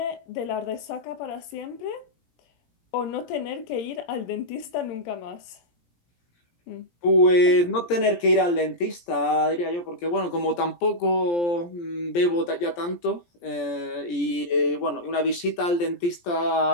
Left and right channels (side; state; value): right; late; 17 ms